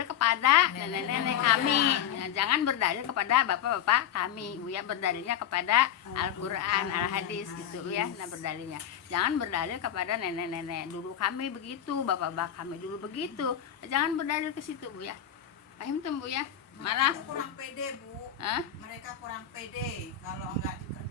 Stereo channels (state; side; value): quieter; right; 9.8 dB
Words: kepada nenek-nenek kami, jangan berdalil kepada bapak-bapak kami Bu ya, berdalilnya kepada Al-Quran, Al-Hadis gitu ya. Nah berdalilnya, jangan berdalil kepada nenek-nenek dulu kami begitu, bapak-bapak kami dulu begitu, jangan berdalil ke situ Bu ya. Paham tuh Bu ya? Malah Mereka kurang pede Bu. Hah? Mereka kurang pede. Kalau nggak